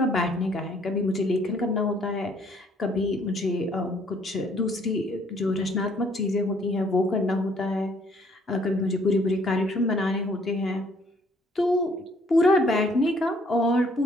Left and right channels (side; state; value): both; normal; correlation 0.63